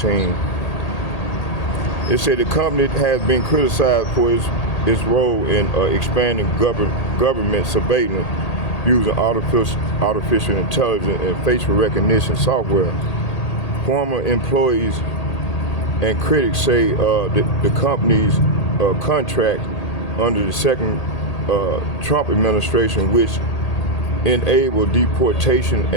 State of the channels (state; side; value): late; right; 1.8 ms